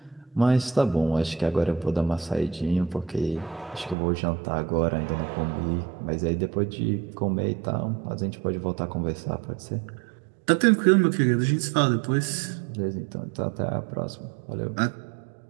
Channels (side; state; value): left; drops out; at 4.0 s